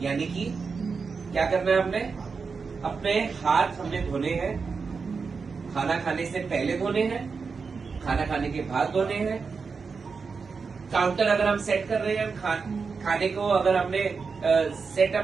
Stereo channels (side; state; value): left; quieter; 5.1 dB